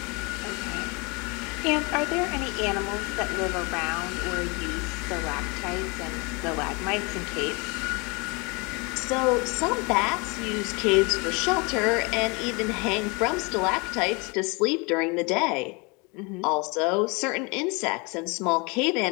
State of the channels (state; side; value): quieter; right; 29.1 dB